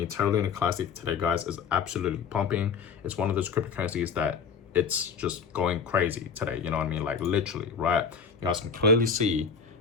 Terra Luna Classic today, guys, is absolutely pumping. It's one of those cryptocurrencies that it's just going crazy today. You know what I mean? Like literally, right? You guys can clearly see.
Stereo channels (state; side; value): quieter; right; 5.9 dB